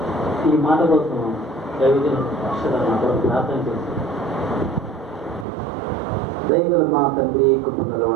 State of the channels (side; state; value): left; drops out; at 5.5 s